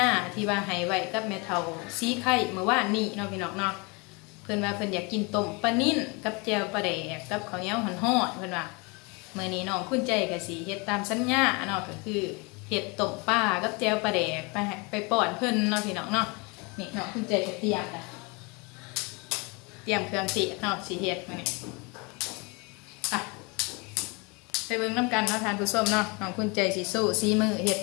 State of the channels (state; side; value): quieter; right; 29.1 dB